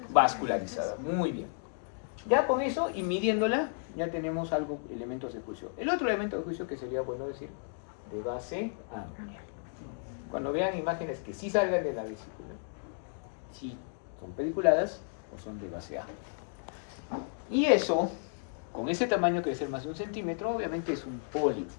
Vascularizada. Muy bien. Ya con eso y midiéndola, ya tenemos algo, elementos de juicio. El otro elemento de juicio que sería bueno decir, de base amplia. Cuando vean imágenes que sí salgan de la vesícula, si son pediculadas o son de base amplia. Y eso, con ese tamaño que debe ser más de 1 centímetro, obviamente es un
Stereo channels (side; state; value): right; silent; digital silence